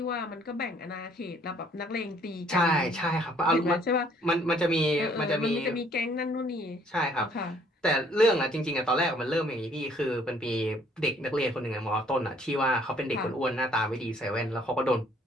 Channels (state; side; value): normal; both; correlation 0.62